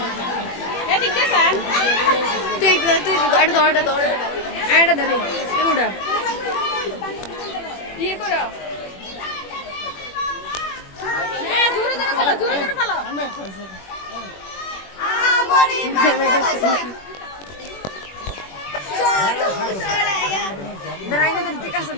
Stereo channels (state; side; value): late; right; 21 ms